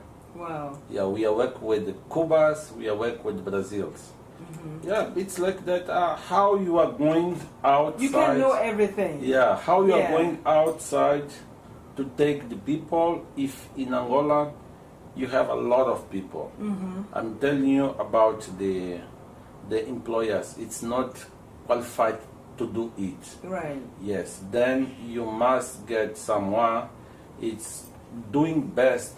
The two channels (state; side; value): identical; both; correlation 1.00